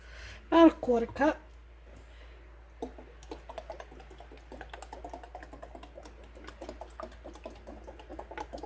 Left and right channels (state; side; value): identical; both; correlation 1.00